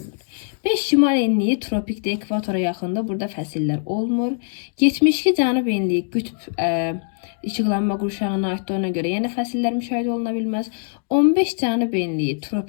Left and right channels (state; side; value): silent; right; 64 dB below the other